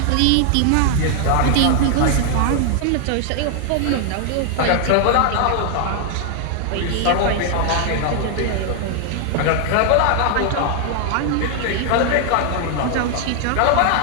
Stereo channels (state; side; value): different; both; correlation 0.00